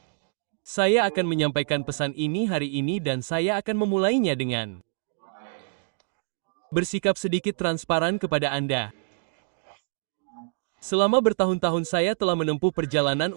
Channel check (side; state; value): left; silent; digital silence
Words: Saya akan menyampaikan pesan ini hari ini dan saya akan memulainya dengan bersikap sedikit transparan kepada Anda. Selama bertahun-tahun saya telah menempuh perjalanan